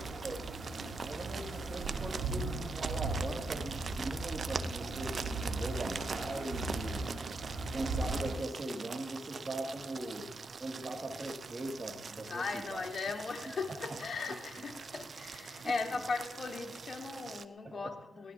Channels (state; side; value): normal; both; correlation 0.82